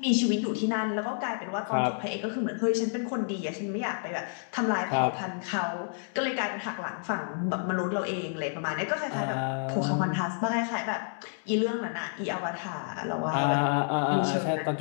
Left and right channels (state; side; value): silent; right; 58 dB below the other